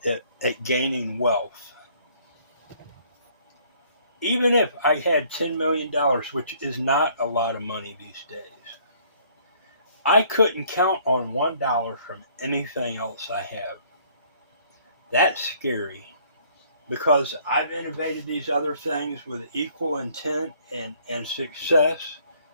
at gaining wealth. Even if I had $10 million, which is not a lot of money these days, I couldn't count on $1 from anything else I have. That's scary because I've innovated these other things with equal intent and success,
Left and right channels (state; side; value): inverted; both; correlation -0.60